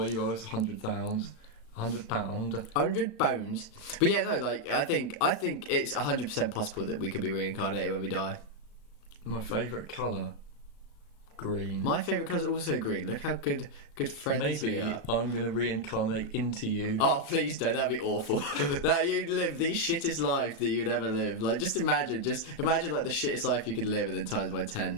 you owe us £100. £100. But yeah, no, like I think it's 100% possible that we could be reincarnated when we die. My favourite colour. Green. My favourite colour is also green. Look how good friends we are. Maybe I'm going to reincarnate into you. Oh, please don't. That'd be awful. That you'd live the shittest life that you'd ever live. Like, just imagine like the shittest life you could live and then times by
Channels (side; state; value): right; late; 36 ms